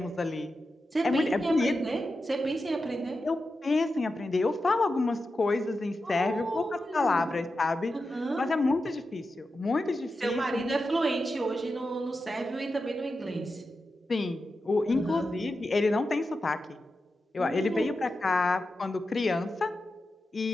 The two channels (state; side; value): normal; both; correlation 0.90